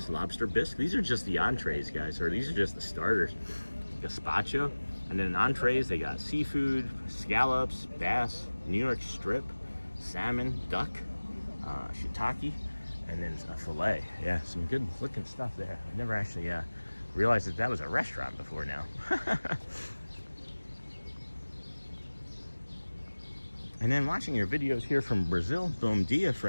lobster bisque. These are just the entrees, guys, or these are just the starters. Gazpacho, and then in entrees they got seafood, scallops, bass, New York strip, salmon, duck, shiitake, and then a fillet. Yeah, some good looking stuff there. I never actually realized that was a restaurant before now. And then watching your videos here from Brazil. Bom dia,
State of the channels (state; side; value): inverted; both; correlation -1.00